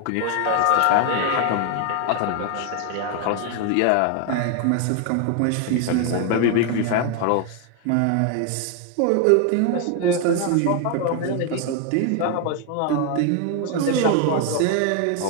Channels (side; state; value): both; different; correlation 0.01